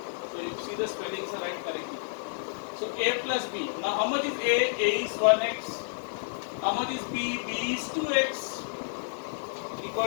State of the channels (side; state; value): right; silent; digital silence